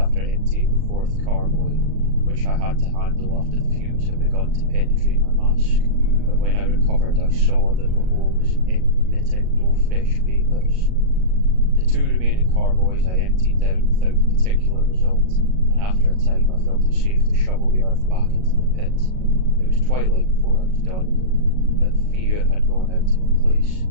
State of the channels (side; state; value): left; late; 38 ms